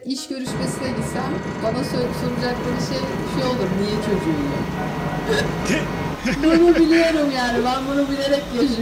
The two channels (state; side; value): identical; both; correlation 1.00